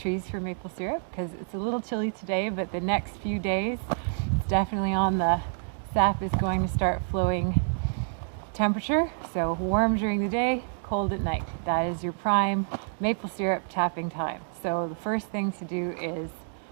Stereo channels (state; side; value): silent; left; digital silence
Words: for maple syrup because it's a little chilly today, but the next few days it's definitely on the sap is going to start flowing temperature. So warm during the day, cold at night. That is your prime maple syrup tapping time. So the first thing to do is